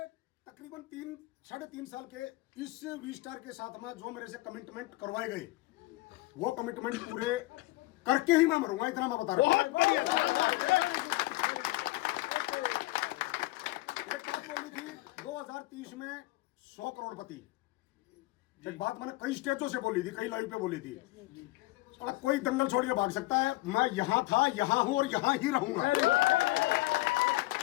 तकरीबन 3 साढ़े 3 साल के इस वी स्टार के साथ में जो मेरे से कमिटमेंट करवाए गए, वो कमिटमेंट पूरे करके ही मैं मरूंगा, इतना मैं बता रहा हूं। एक बात बोली थी 2030 में 100 करोड़पति, एक बात मैंने कई स्टेजों से बोली थी, कई लाइव पे बोली थी। कोई दंगल छोड़ के भाग सकता है, मैं यहां था, यहां हूं और यहां ही रहूंगा।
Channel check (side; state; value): right; quieter; 20.2 dB